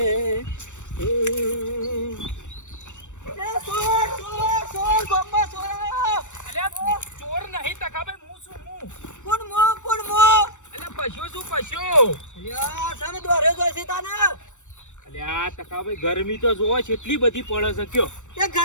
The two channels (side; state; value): right; late; 0.85 ms